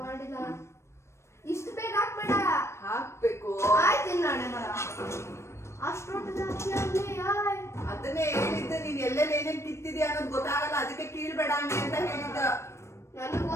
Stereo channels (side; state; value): right; late; 0.13 ms